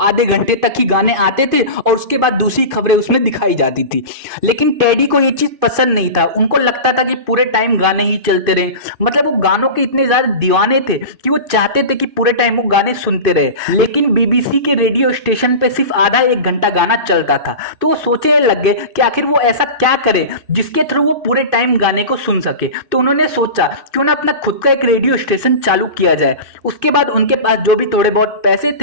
घंटे तक ही गाने आते थे और उसके बाद दूसरी खबरें उसमें दिखाई जाती थी। लेकिन टेडी को ये चीज पसंद नहीं था। उनको लगता था कि पूरे टाइम गाने ही चलते रहे। मतलब वो गानों के इतने ज्यादा दीवाने थे कि वो चाहते थे कि पूरे टाइम वो गाने सुनते रहे। लेकिन बीबीसी के रेडियो स्टेशन पे सिर्फ आधा 1 घंटा गाना चलता था। तो वो सोचने लग गए कि आखिर वो ऐसा क्या करे जिसके थ्रू वो पूरे टाइम गाने को सुन सके। तो उन्होंने सोचा क्यों ना अपना खुद का एक रेडियो स्टेशन चालू किया जाए। उसके बाद उनके पास जो भी थोड़े बहुत पैसे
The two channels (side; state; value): left; late; 2.5 ms